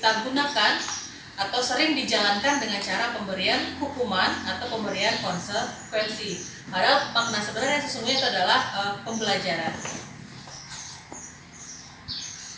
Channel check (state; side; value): identical; both; correlation 1.00